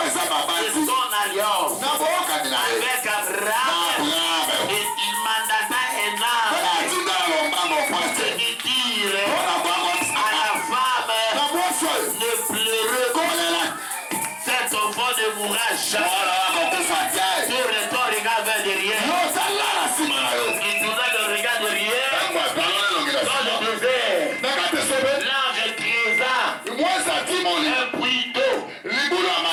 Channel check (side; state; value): both; identical; correlation 1.00